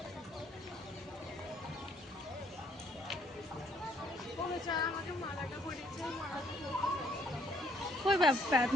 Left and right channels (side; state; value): both; normal; correlation 0.68